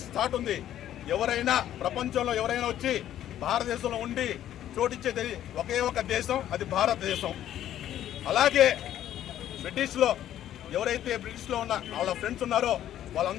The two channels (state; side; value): quieter; right; 11.7 dB